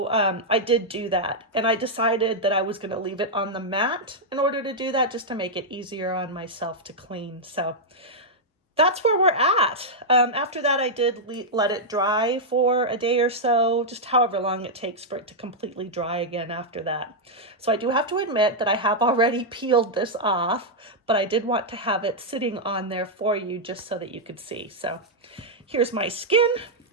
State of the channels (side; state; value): both; normal; correlation -0.05